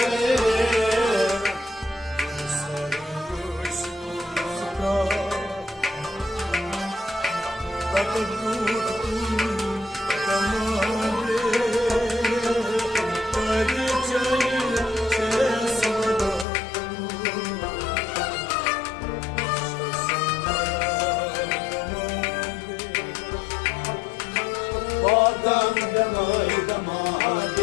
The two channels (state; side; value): drops out; right; at 16.4 s